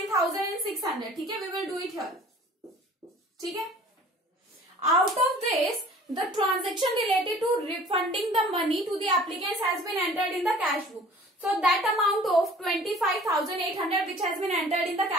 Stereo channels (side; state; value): both; normal; correlation 0.48